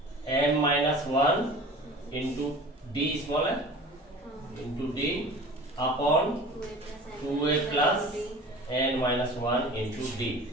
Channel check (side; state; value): both; normal; correlation 0.41